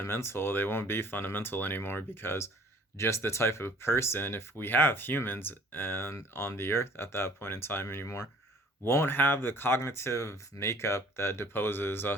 they won't be fundamental anymore, because just the type of person, if we have humans and on the earth at that point in time anymore, won't have the cognitive makeup that deposes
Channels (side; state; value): both; normal; correlation 0.53